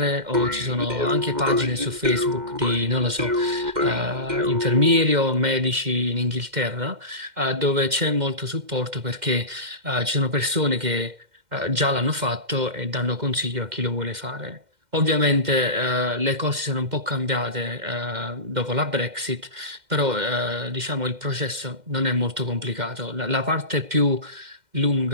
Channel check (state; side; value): late; left; 2.1 ms